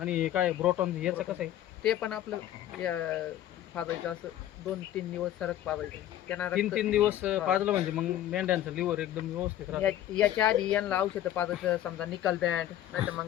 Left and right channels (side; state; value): right; quieter; 12.3 dB